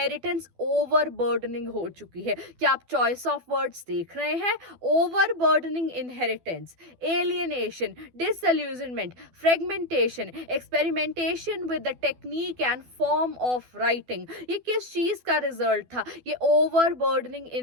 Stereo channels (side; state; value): left; late; 12 ms